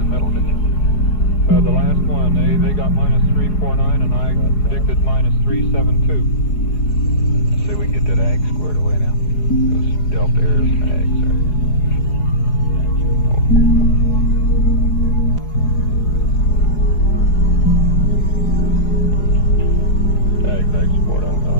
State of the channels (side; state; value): right; late; 4.8 ms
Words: middle, didn't you? the last one. They got -349, and I predicted -372. Let's see if we can get that ag squared away now. Those delta errors and ags there. Ag support on